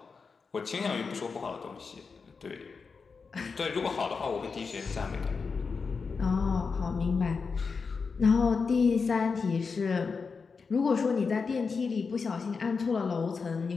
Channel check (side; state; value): right; quieter; 5.0 dB